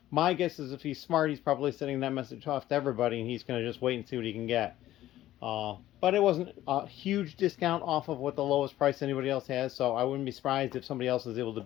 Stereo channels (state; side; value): quieter; right; 14.1 dB